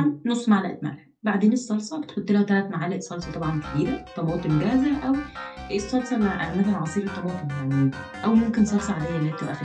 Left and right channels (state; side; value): identical; both; correlation 1.00